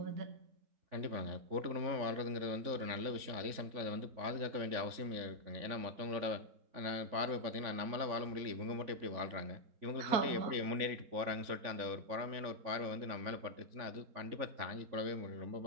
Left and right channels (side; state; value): left; late; 3.5 ms